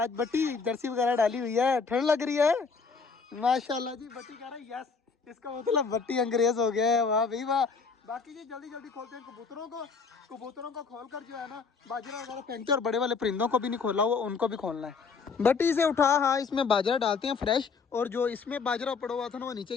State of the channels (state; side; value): quieter; right; 5.1 dB